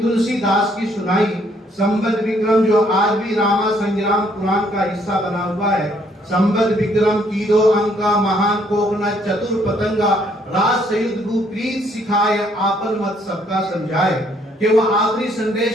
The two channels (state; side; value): normal; both; correlation 0.67